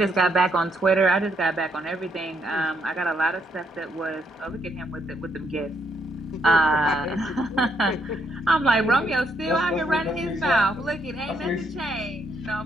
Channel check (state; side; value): normal; both; correlation 0.74